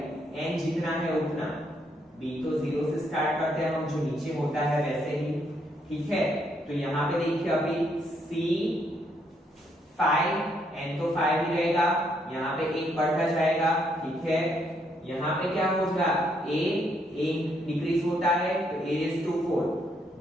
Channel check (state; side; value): normal; both; correlation 0.73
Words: n जितना है उतना, b तो 0 से स्टार्ट करते हैं हम, जो नीचे होता है वैसे ही, ठीक है। तो यहाँ पे देखिए अभी C5 n तो 5 ही रहेगा, यहाँ पे एक बढ़ता जाएगा, ठीक है। यहाँ पे क्या होगा a डिक्रीज होता है तो a raised to 4,